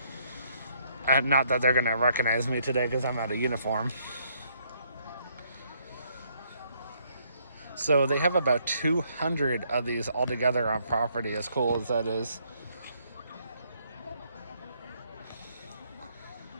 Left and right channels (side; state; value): both; inverted; correlation -0.69